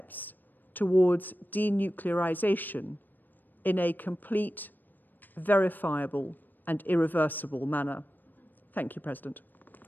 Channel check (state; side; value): late; right; 0.090 ms